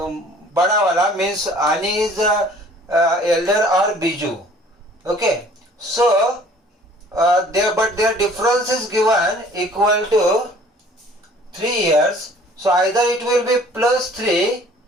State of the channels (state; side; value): normal; both; correlation 0.53